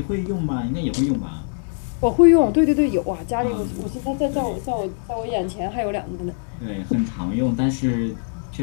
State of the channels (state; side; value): silent; right; 64 dB below the other